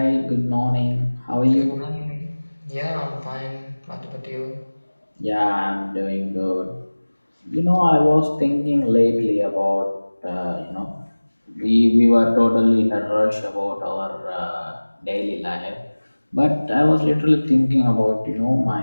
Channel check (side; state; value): both; inverted; correlation -1.00